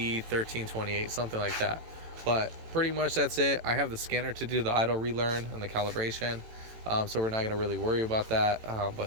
something like that. But pretty much that's it. I have the scanner to do the idle relearn and the calibration, so we're not going to really worry about that.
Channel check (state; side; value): late; left; 18 ms